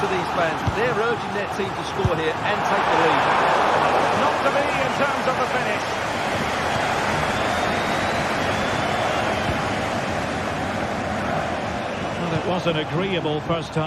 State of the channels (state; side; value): identical; both; correlation 1.00